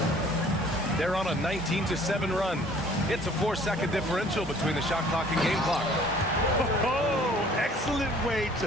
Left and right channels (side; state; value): both; normal; correlation 0.54